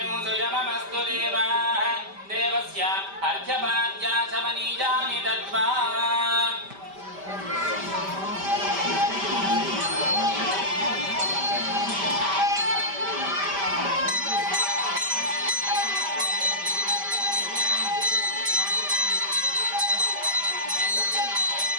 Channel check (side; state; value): left; late; 5.1 ms